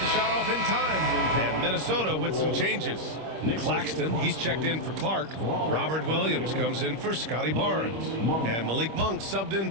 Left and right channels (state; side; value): late; left; 26 ms